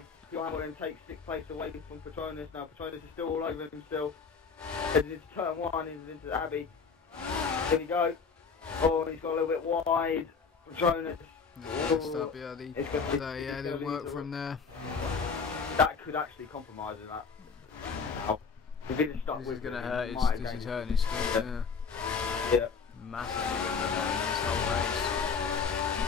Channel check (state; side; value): quieter; right; 5.4 dB